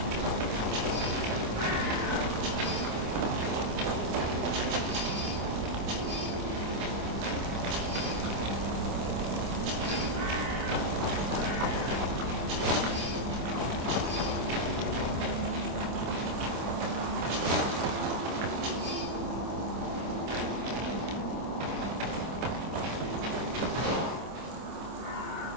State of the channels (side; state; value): left; late; 26 ms